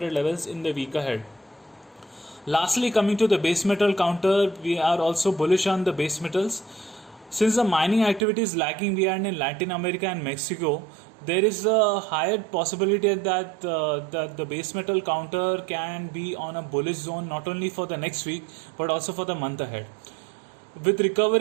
levels in the week ahead. Lastly, coming to the base metal counter, we are also bullish on the base metals. Since the mining activity is lagging behind in Latin America and Mexico, there is a higher possibility that the base metal counter can be on a bullish zone not only for the next week but also for the month ahead. With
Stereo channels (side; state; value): left; drops out; at 8.2 s